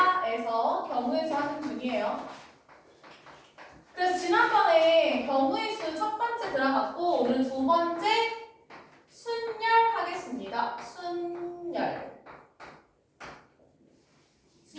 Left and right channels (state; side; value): identical; both; correlation 1.00